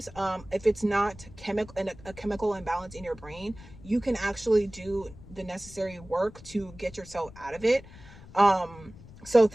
if it's not a chemical imbalance in your brain, you can actually do the necessary work to get yourself out of it. So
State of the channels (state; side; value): noise; left; rumble, 19 dB below the sound